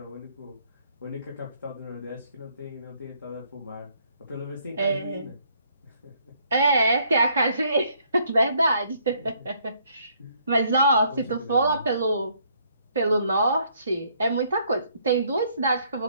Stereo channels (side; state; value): both; inverted; correlation -0.67